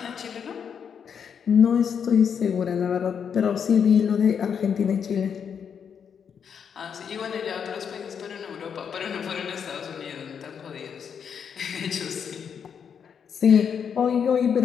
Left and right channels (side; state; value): right; quieter; 7.3 dB